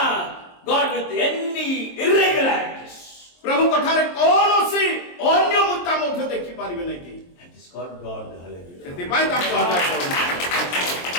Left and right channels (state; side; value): late; right; 23 ms